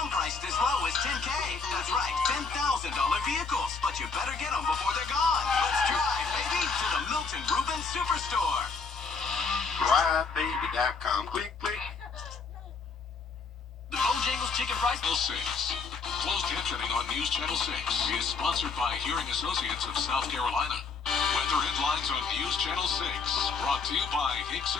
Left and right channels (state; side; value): quieter; right; 4.9 dB